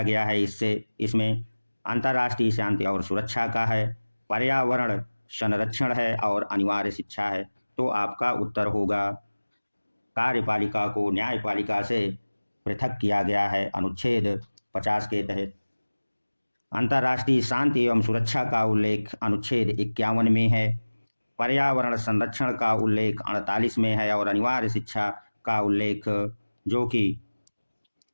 गया है। इसमें अंतर्राष्ट्रीय शांति और सुरक्षा का है, पर्यावरण संरक्षण है और अनिवार्य शिक्षा है। तो आपका उत्तर होगा कार्यपालिका को न्यायपालिका से पृथक किया गया है अनुच्छेद 50 के तहत। अंतर्राष्ट्रीय शांति एवं सुरक्षा का उल्लेख अनुच्छेद 51 में है, पर्यावरण संरक्षण का उल्लेख 48 में है और अनिवार्य शिक्षा का उल्लेख जो कि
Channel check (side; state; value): both; inverted; correlation -1.00